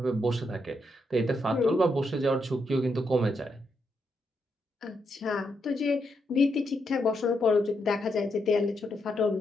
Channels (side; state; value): both; normal; correlation 0.81